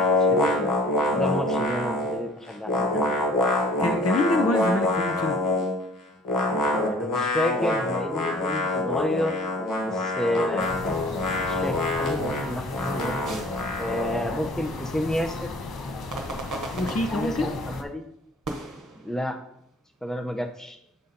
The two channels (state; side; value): normal; both; correlation 0.51